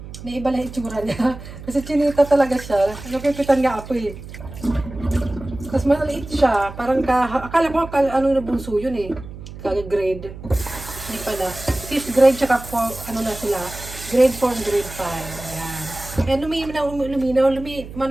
Naiba lang itsura niya. Kasi chinita talaga siya. Nakikitan nga ako eh. Tapos maliit siya. Parang akala ko na bunso yun eh. Grade. Hindi pala. 5th grade tsaka na sila. Grade 4, grade 5. Ayan. Ayan,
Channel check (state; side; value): noise; right; hum, 13 dB below the sound